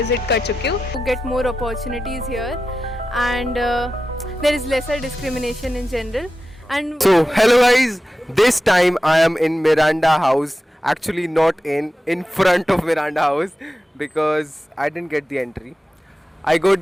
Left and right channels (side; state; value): both; normal; correlation 0.92